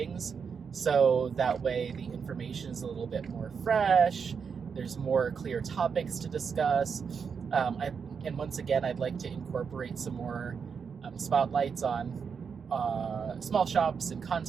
so that way the information is a little bit more fresh. There's more clear topics to discuss. And once again, I'd like to incorporate some more spotlights on small shops and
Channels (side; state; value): left; quieter; 6.2 dB